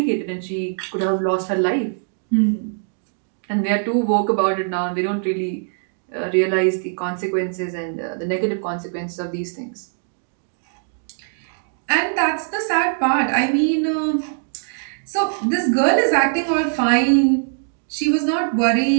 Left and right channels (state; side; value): silent; left; digital silence